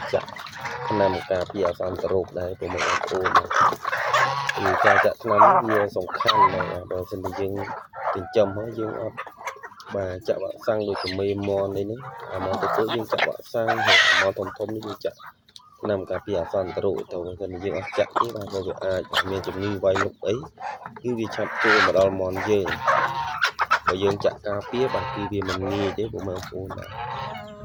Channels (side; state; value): both; identical; correlation 1.00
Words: ចាក់ថ្នាំការពារអសន្នរោគដែរព្រោះបងប្អូនគឺការចាក់ថ្នាំវាសំខាន់ណាស់បើមិនតែយើងចិញ្ចឹមហើយយើងអត់បាទចាក់វ៉ាក់សាំងដូចជាមេមននេះអាមកទៅយើងចាក់វ៉ាក់សាំងហើយអាមកធំនេះយើងចាក់ថ្នាំការពារអសន្នរោគទៅបើមិនយើងអត់ចាក់ទេបាទវាអាចមានជំងឺវាយលុកអីគឺវាឆាប់ចូលមកដល់មនយើងបើយើងចាក់ការពារបាទគឺវាមិនងាយទេបងប្អូនបាទ